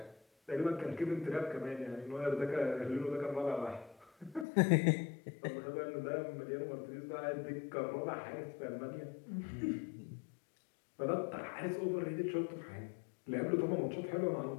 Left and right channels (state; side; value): drops out; right; at 4.5 s